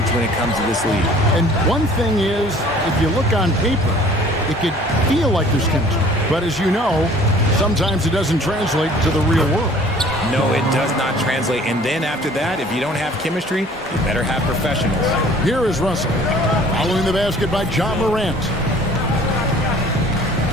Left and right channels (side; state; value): both; normal; correlation 0.51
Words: when it comes to this league. And one thing is, if you look on paper, it could feel like there's chemistry. But as you know, sometimes it doesn't translate to the real world. No, it does not translate. And then after that, if you don't have chemistry, you better have professionals. Here is Russell. Following the basket by Ja Morant.